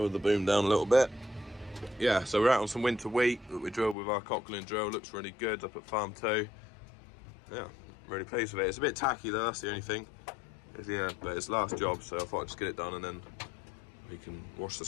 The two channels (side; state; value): right; drops out; at 4.0 s